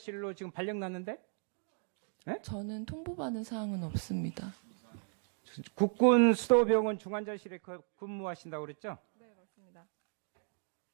지금 발령 났는데 저는 통보받은 사항은 없습니다. 국군 수도병원 중환자실에 근무하신다고 그랬죠? 네, 맞습니다.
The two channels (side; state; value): left; silent; 54 dB below the other